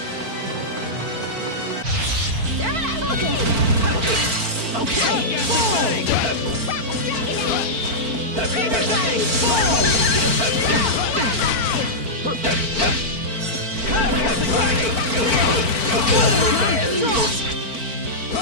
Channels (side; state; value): left; late; 4.5 ms